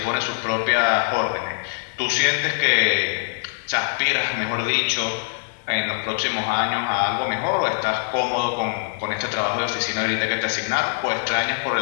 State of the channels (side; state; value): right; silent; digital silence